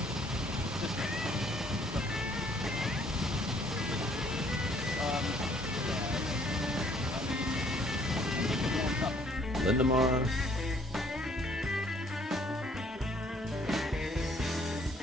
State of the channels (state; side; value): normal; both; correlation 0.62